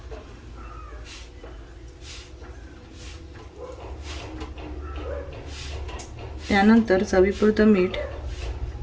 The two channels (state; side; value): identical; both; correlation 1.00